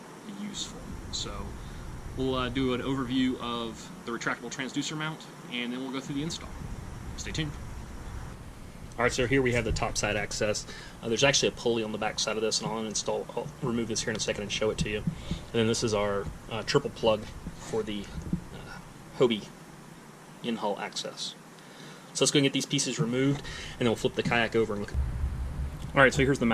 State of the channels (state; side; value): identical; both; correlation 1.00